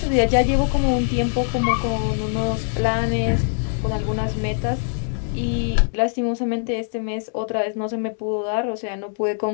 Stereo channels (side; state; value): right; silent; digital silence